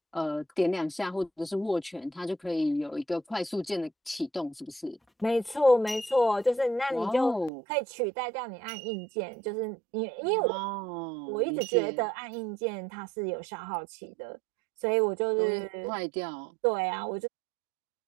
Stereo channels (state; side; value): drops out; left; at 7.5 s